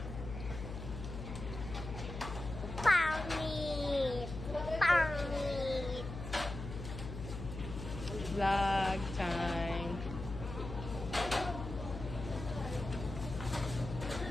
Pangit. Vlog time.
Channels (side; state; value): left; noise; hum, 8 dB below the sound